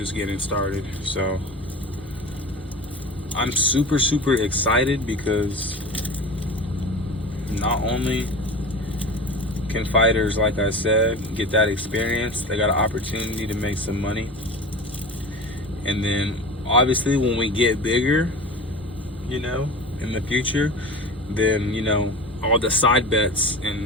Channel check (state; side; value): normal; both; correlation 0.32